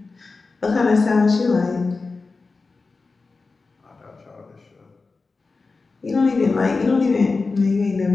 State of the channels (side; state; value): right; quieter; 4.0 dB